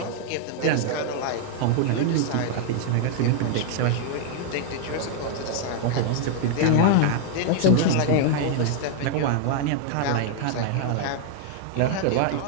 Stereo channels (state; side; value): different; both; correlation 0.00